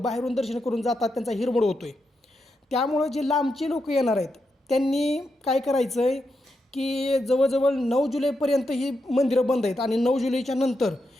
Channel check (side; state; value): both; normal; correlation 0.85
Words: बाहेरून दर्शन करून जातात, त्यांचा हिरमोड होतो आहे. त्यामुळं जे लांबचे लोक येणार आहेत त्यांनी काय करायचं आहे की जवळजवळ 9 जुलैपर्यंत ही मंदिरं बंद आहेत आणि 9 जुलैच्या नंतर